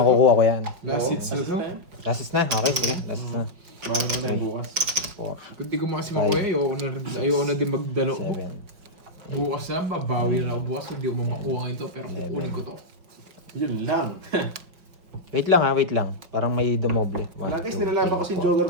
ko yan. Last hits na to. Last is na? Okay, sige. Last is na. Bawal mo na yung bukas. 4, Kung di ko makasi makuha, ayoko na din magdalo ko. 7, Bukas na, babawi na ako bukas. Hindi ko mamakuha ito, pero kukunin ko to. Yun lang. Wait lang ha, wait lang. Parang may dumoble. Wala, guys, nilalaban ko si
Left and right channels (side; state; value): left; late; 5.4 ms